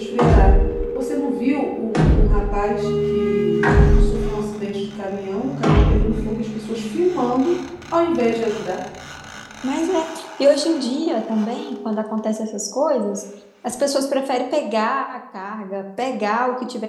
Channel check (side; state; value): both; identical; correlation 1.00